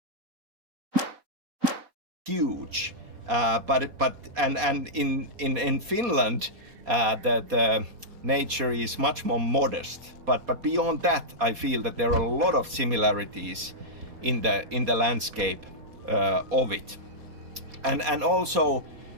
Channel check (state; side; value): late; left; 4.2 ms